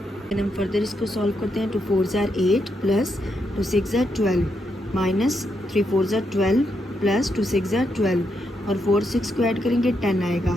हम फर्दर इसको सॉल्व करते हैं. 2 4s are 8 plus 2 6s are 12 minus 3 4s are 12 plus 2 6s are 12 और 4 6 को ऐड करेंगे 10 आएगा.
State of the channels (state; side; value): normal; both; correlation 0.81